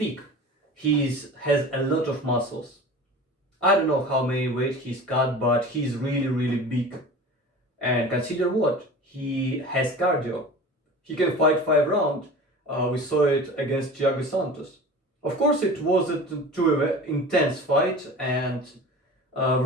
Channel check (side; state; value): both; normal; correlation 0.37